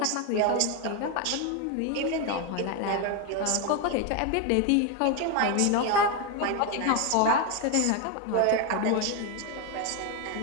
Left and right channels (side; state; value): both; different; correlation 0.02